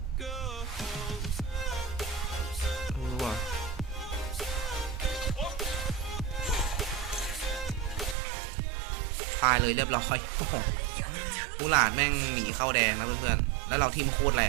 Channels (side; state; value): left; drops out; at 8.2 s